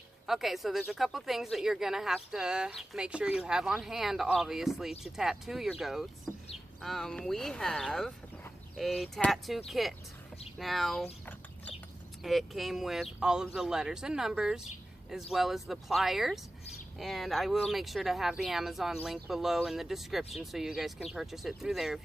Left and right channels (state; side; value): normal; both; correlation 0.95